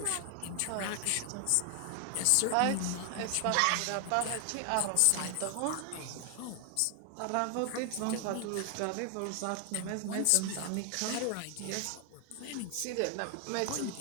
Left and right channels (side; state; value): both; different; correlation 0.00